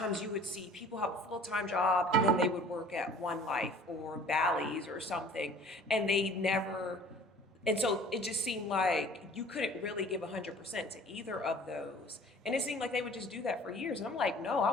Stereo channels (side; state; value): both; normal; correlation 0.49